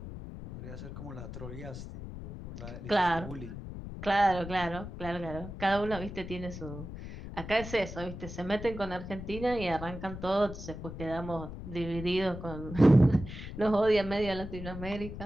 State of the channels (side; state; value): left; noise; rumble, 10 dB below the sound